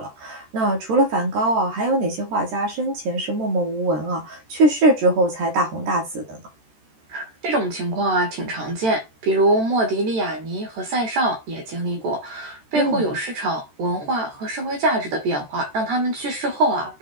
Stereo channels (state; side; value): late; left; 13 ms